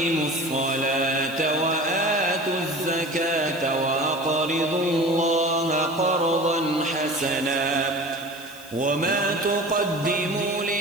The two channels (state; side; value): noise; left; hiss, 18 dB below the sound